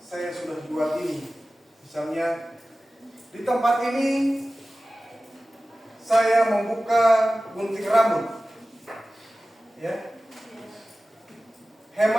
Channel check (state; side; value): normal; both; correlation 0.96